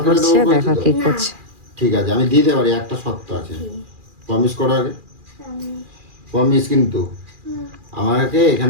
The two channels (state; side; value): late; left; 2.4 ms